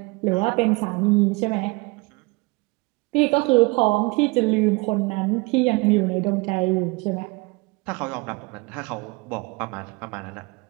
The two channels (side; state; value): left; quieter; 25.9 dB